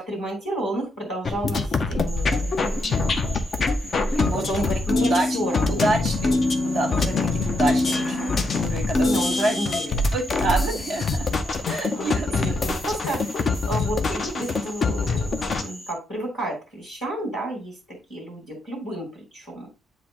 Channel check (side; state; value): both; normal; correlation 0.80